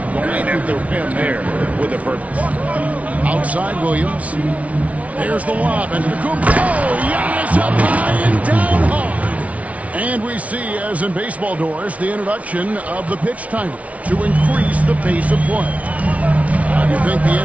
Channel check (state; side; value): late; left; 0.067 ms